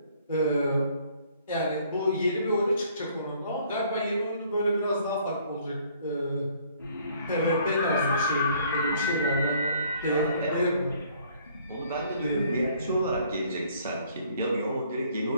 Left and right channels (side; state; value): both; inverted; correlation -0.61